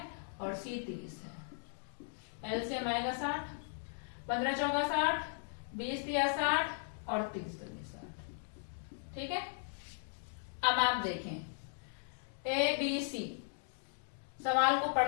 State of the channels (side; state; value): right; silent; digital silence